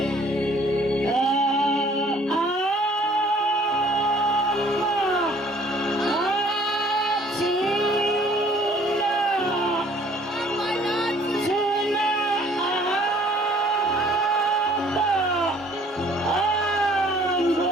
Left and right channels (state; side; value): normal; both; correlation 0.56